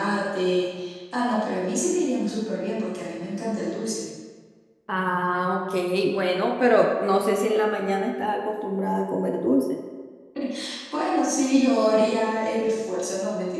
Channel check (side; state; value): both; identical; correlation 1.00